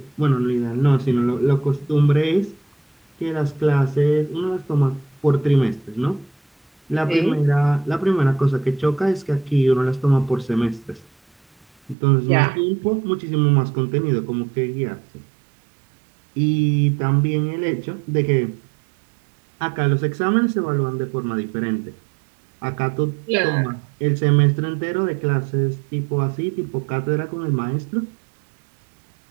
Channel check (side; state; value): left; drops out; at 12.0 s